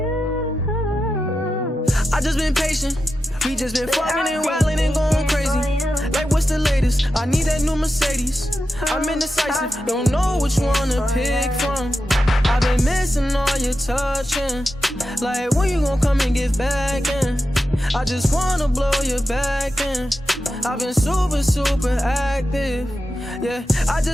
I just been patient. We just been fucking and wildin' and going crazy. Like what's the latest? I need that new Mercedes. I'm indecisive, don't know which one to pick from. I've been missing all your touching. Like when you gon' come and get back in? I just wanna blow your back in. I've been super active. Yeah, I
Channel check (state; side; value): normal; both; correlation 0.90